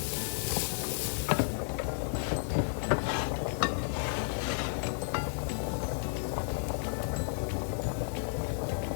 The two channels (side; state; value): right; silent; digital silence